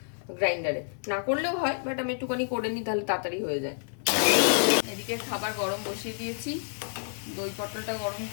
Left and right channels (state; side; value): silent; right; digital silence